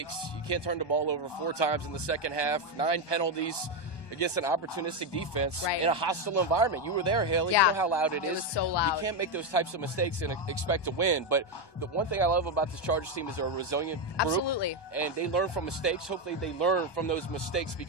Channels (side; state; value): right; late; 1.2 ms